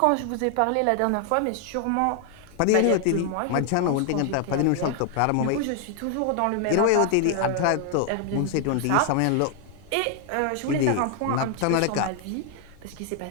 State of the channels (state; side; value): different; both; correlation 0.00